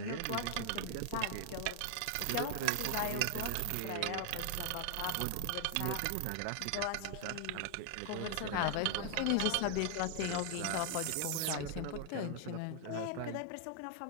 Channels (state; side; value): different; both; correlation 0.00